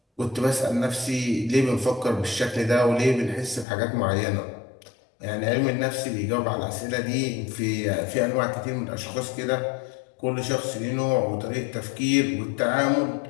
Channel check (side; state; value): right; drops out; at 3.7 s